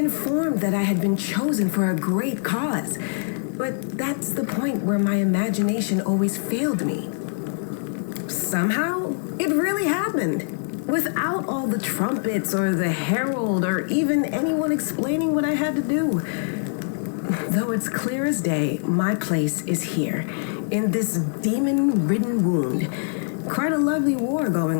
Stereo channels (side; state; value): right; silent; 63 dB below the other